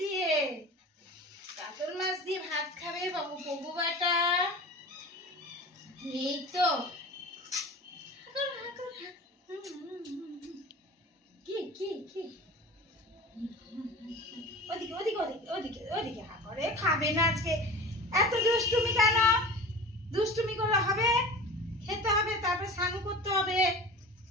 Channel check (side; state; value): both; normal; correlation 0.36